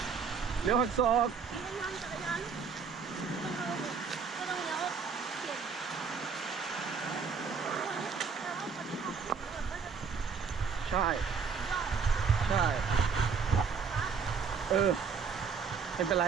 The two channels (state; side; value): quieter; left; 5.7 dB